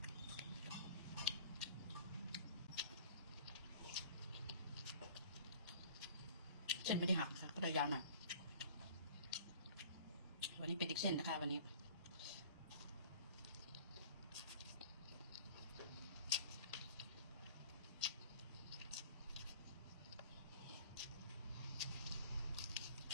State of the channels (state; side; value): inverted; both; correlation -0.46